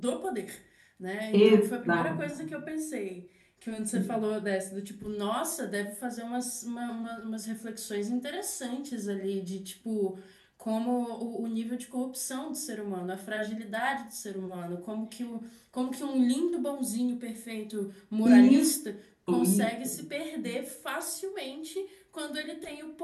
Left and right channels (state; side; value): identical; both; correlation 1.00